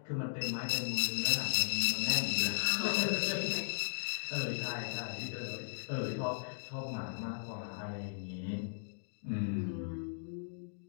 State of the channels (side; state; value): right; silent; digital silence